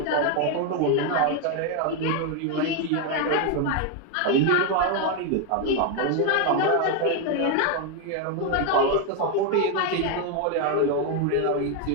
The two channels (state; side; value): different; both; correlation 0.01